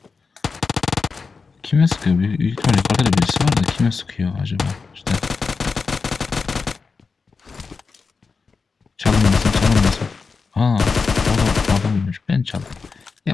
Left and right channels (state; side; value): quieter; right; 4.8 dB